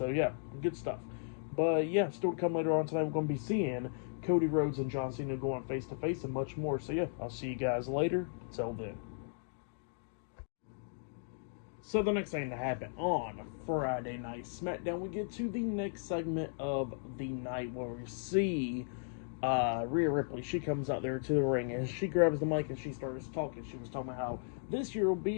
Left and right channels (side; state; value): right; silent; digital silence